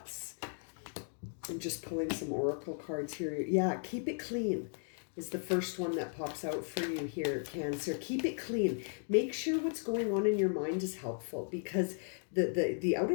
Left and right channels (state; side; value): silent; right; 54 dB below the other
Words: I'm just pulling some oracle cards here. Yeah, keep it clean. is the first one that pops out for you here, Cancer. Keep it clean. Make sure what's going on in your mind is helpful, because the